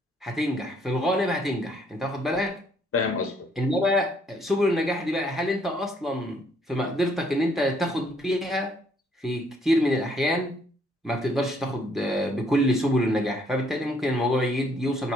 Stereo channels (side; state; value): both; normal; correlation 0.67